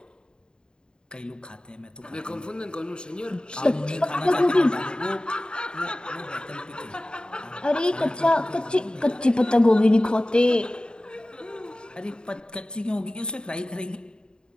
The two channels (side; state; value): right; late; 0.049 ms